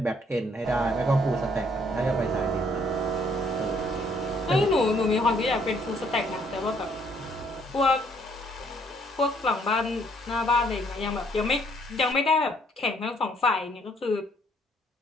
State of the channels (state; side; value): normal; both; correlation 0.66